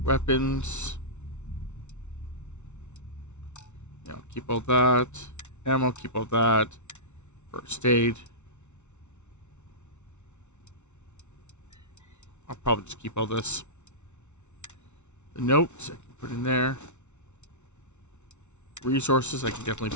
Weapons. keep all that. Ammo, keep all that. First aid. I'll probably just keep all this. The notes I can put in there. Resources I can definitely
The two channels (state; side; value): late; right; 0.82 ms